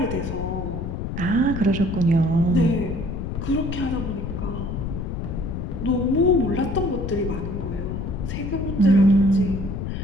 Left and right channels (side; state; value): left; noise; rumble, 4 dB below the sound